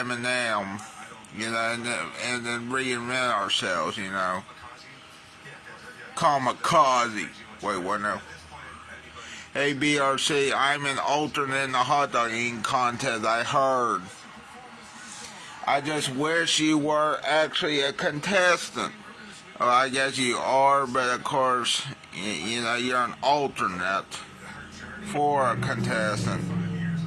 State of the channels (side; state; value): both; identical; correlation 1.00